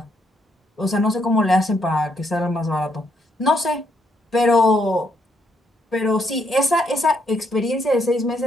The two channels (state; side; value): normal; both; correlation 0.75